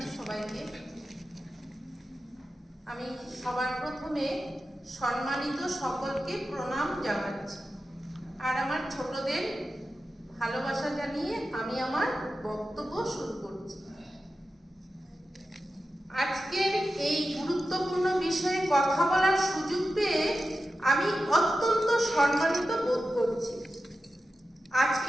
সবাইকে আমি সবার প্রথমে সম্মানিত সকলকে প্রণাম জানাচ্ছি আর আমার ছোটদের ভালোবাসা জানিয়ে আমি আমার বক্তব্য শুরু করছি আজকের এই গুরুত্বপূর্ণ বিষয়ে কথা বলার সুযোগ পেয়ে আমি অত্যন্ত সম্মানিত বোধ করছি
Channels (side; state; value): both; normal; correlation 0.92